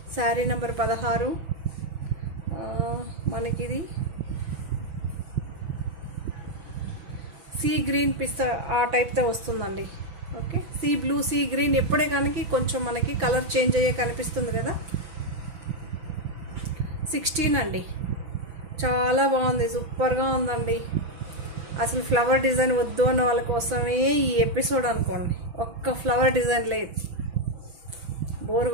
Sari number 16. మనకిది సీ గ్రీన్ పిస్తా ఆ టైప్తో వస్తుందండి. Okay, sea blue, sea green ఎప్పుడే కానీ కొంచెం మనకి కలర్ చేంజ్ అయ్యే కనిపిస్తుంది కదా. 16 అండి. చాలా బాగుంది, సూపర్గా ఉందండి. అసలు ఫ్లవర్ డిజైన్ వద్దు అన్న వాళ్ళ కోసమే ఈ ఎపిసోడ్ అనుకోండి. ఒక్క ఫ్లవర్ డిజైన్ లేదు, బోర్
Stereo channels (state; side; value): late; left; 6.0 ms